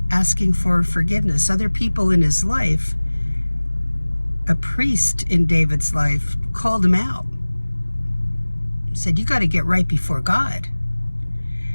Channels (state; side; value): inverted; both; correlation -1.00